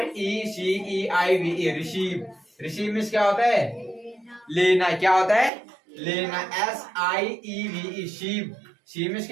E C E I V E, receive. Receive means क्या होता है? लेना। क्या होता है? लेना। S I E V E Shiv, Shiv means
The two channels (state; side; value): drops out; left; at 5.5 s